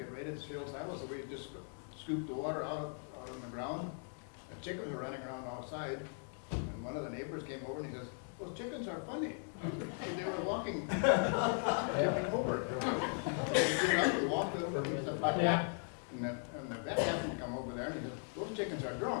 ready to fill silo, so we just scooped the water out on the ground. The chickens were running around outside, and one of the neighbors came over and he says, those chickens are funny. They were walking, jumping over. We walked over, and stuff like that. And the vet happened to come over there and he said, those chickens are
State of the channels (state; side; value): silent; right; 52 dB below the other